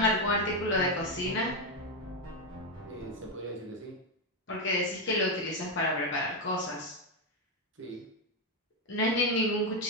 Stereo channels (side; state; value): both; normal; correlation 0.06